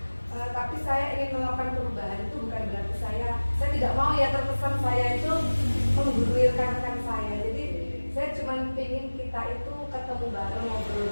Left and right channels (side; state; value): both; inverted; correlation -1.00